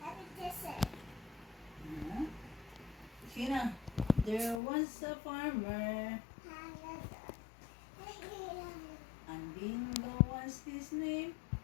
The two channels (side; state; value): right; drops out; at 4.6 s